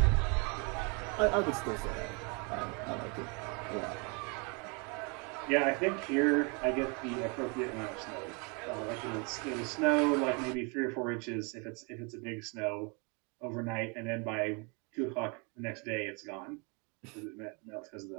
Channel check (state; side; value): quieter; left; 32.6 dB